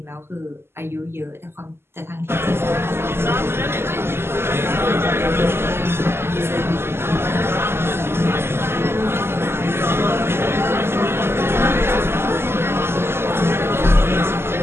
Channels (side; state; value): left; late; 0.12 ms